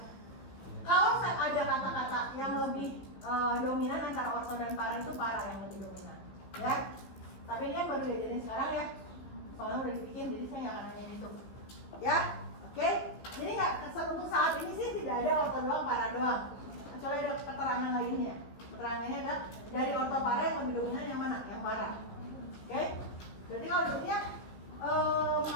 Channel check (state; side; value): late; right; 15 ms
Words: Kalau ada kata-kata yang lebih dominan antara orto dan para, itu para yang lebih dominan, ya. Tapi ini baru diajarin sekarang ya. Soalnya udah dibikin, jadi saya nggak akan nanya itu, ya, oke? Jadi nggak, untuk saat ini sih tidak ada orto doang, para doang, kecuali ada keterangan lainnya. Keterangannya ada dari orto para yang lebih dominan yang mana? Yang para, oke? Berarti kalau dia